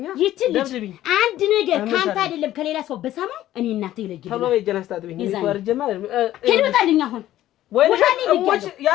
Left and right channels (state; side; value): quieter; right; 13.6 dB